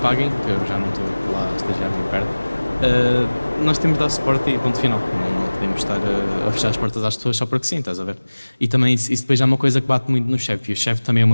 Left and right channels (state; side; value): inverted; both; correlation -1.00